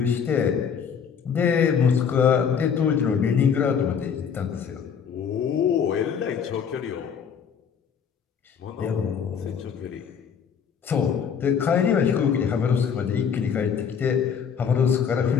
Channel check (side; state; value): right; quieter; 7.1 dB